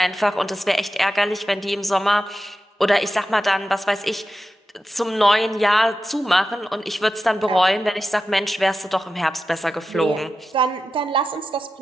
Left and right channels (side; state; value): both; normal; correlation 0.92